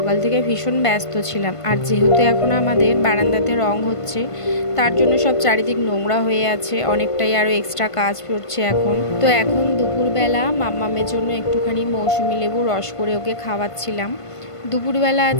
থেকে ভীষণ ব্যস্ত ছিলাম। আর যেহেতু এখন আমাদের বারান্দাতে রং হচ্ছে, তার জন্য সব চারিদিক নোংরা হয়ে আছে, অনেকটাই আরও এক্সট্রা কাজ পড়ছে এখন। তো এখন দুপুরবেলা মাম্মামের জন্য একটুখানি মৌসুমি লেবু রস করে ওকে খাওয়াচ্ছিলাম। দুপুরবেলা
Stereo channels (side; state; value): right; late; 1.5 ms